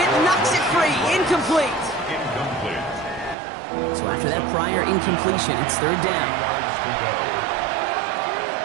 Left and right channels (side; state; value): left; drops out; at 3.4 s